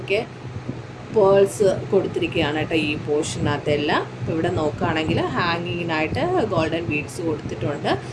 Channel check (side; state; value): both; identical; correlation 1.00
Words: പേൾസ് കൊടുത്തിരിക്കുകയാണ് കേട്ടോ ഈ പോർഷനകത്തെല്ലാം. ഇപ്പോൾ ഇവിടെ നോക്കുകയാണെങ്കിൽ ഹാങ്ങിങ്ങിനായിട്ട് ഗോൾഡൻ ബീഡ്സ് കൊടുത്തിട്ടുണ്ട്.